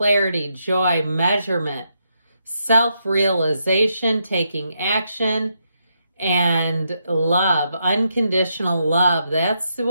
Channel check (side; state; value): both; inverted; correlation -0.80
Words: joy, measurement, self-realization, taking action, and love, unconditional love. That's